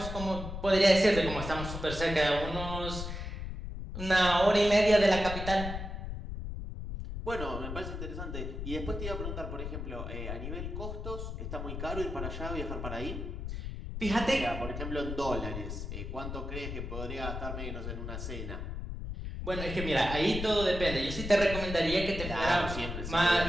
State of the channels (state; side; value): noise; left; rumble, 6 dB below the sound